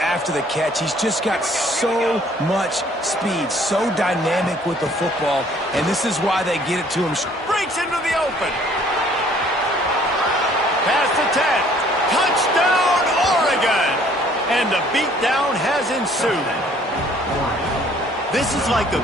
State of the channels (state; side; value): normal; both; correlation 0.58